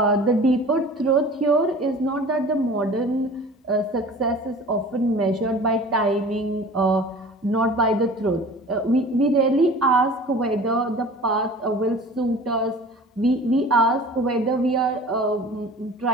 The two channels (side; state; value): both; normal; correlation 0.42